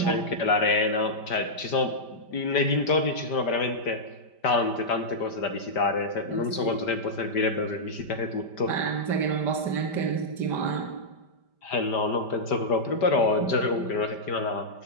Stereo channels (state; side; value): late; right; 5.1 ms